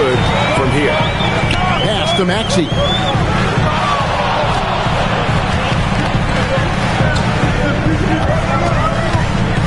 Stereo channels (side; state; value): both; identical; correlation 1.00